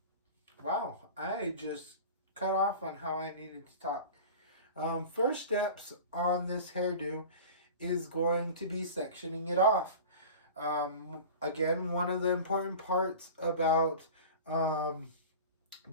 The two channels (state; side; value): inverted; both; correlation -0.36